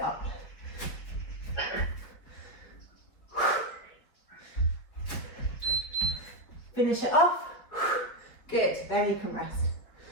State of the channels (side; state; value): right; late; 4.7 ms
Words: up. Finish it off. Good, then you can rest.